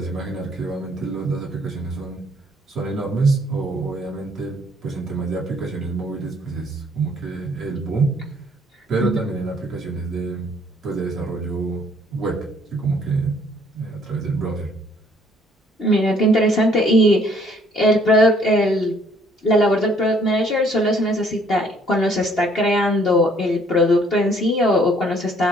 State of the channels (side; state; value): both; normal; correlation 0.62